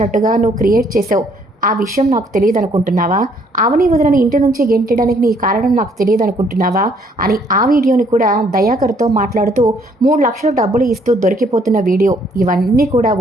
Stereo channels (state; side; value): normal; both; correlation 0.65